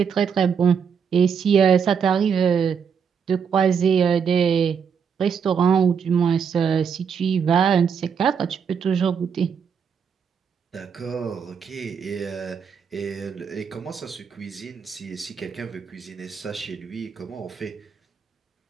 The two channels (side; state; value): left; quieter; 6.8 dB